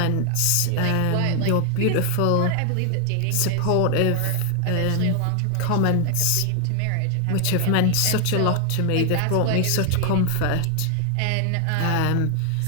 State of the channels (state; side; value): different; both; correlation 0.00